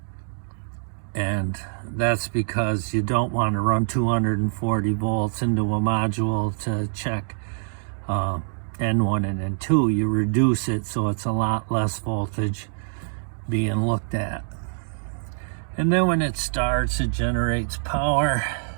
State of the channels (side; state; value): left; silent; digital silence